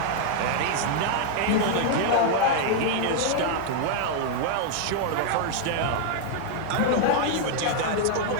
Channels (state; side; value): different; both; correlation 0.00